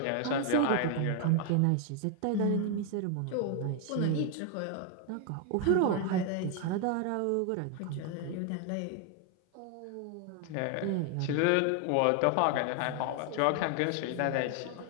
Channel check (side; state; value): both; different; correlation 0.01